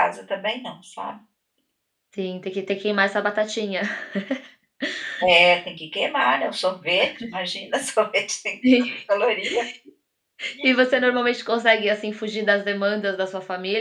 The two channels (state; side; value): identical; both; correlation 1.00